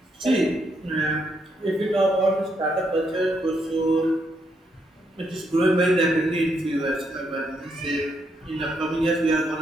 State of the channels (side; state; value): both; normal; correlation 0.77